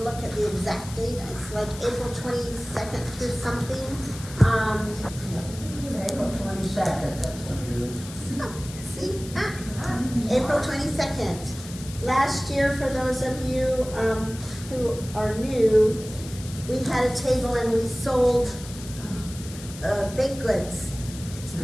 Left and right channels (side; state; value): left; noise; hiss, 14 dB below the sound